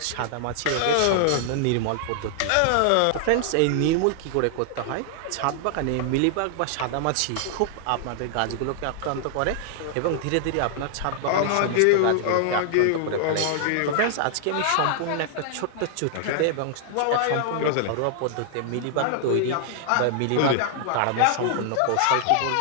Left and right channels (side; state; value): both; different; correlation 0.00